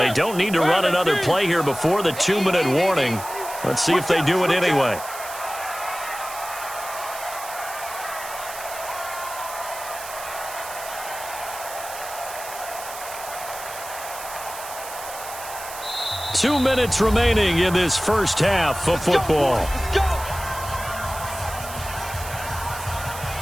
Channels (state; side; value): noise; right; hiss, 11 dB below the sound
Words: don't need to run another play here before the 2-minute warning. Let's see if they do it anyway. Two minutes remaining in this first half of football. Let's go.